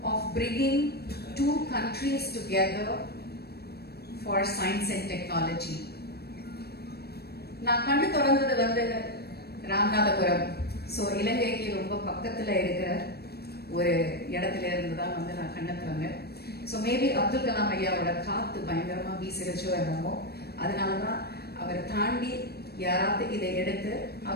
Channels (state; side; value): late; right; 0.47 ms